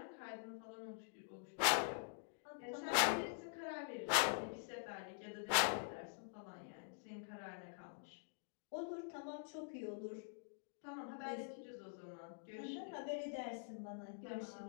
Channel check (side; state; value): right; silent; digital silence